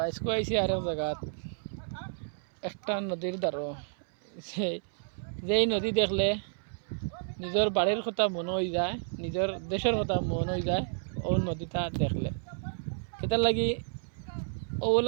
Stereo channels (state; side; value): silent; left; 57 dB below the other